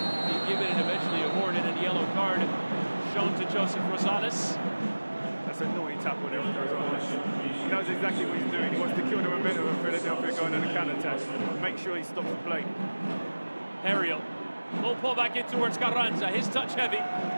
being given and eventually awarded, and a yellow card shown to Joseph Rosales. That's a naughty tackle there from Rosales. He knows exactly what he's doing. He wants to kill the momentum of Philadelphia going on a counter-attack. Make sure he stops the play. Ariel. Low pull back in towards Carranza. His touch heavy.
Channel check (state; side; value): inverted; both; correlation -1.00